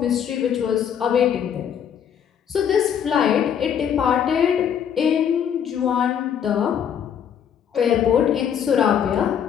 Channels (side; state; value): right; quieter; 8.5 dB